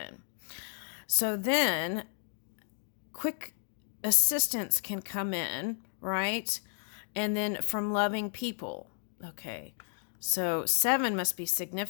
So then quick assistance can come in, right? And then from loving people. Okay. So 7 must be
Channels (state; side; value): silent; right; 56 dB below the other